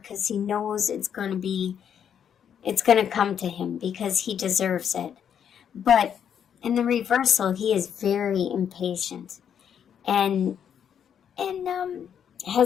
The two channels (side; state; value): right; quieter; 8.4 dB